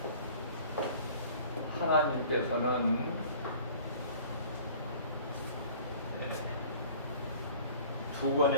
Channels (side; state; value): both; inverted; correlation -0.49